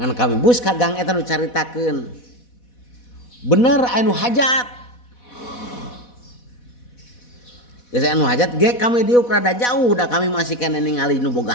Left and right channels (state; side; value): late; right; 4.1 ms